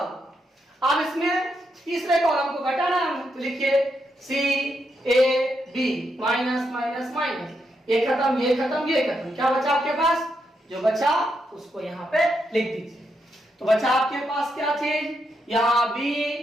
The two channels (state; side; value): normal; both; correlation 0.81